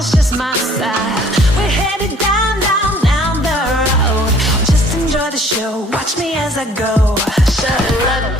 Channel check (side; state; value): both; normal; correlation 0.56